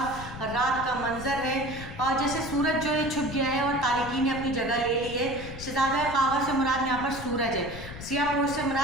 رات کا منظر ہے، اور جیسے سورج جو ہے چھپ گیا ہے اور تاریکی نے اپنی جگہ لے لی ہے، شہزادہ خاور سے مراد یہاں پر سورج ہے، سیاہ پوش سے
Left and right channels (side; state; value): left; noise; rumble, 12 dB below the sound